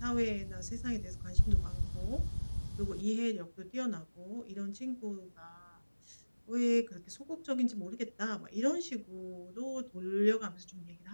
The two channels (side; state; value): both; inverted; correlation -1.00